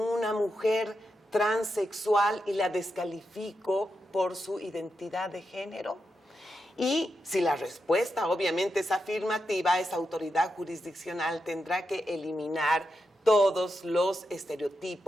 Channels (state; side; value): normal; both; correlation 0.86